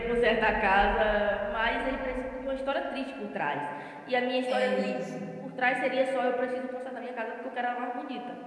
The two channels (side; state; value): both; identical; correlation 1.00